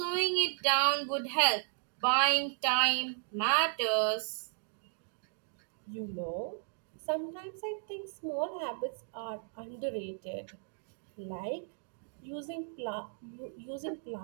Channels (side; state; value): left; silent; digital silence